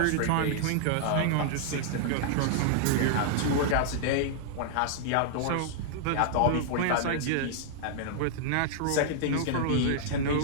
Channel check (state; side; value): different; both; correlation -0.01